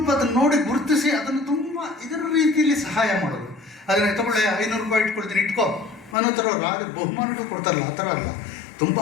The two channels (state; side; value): drops out; right; at 6.2 s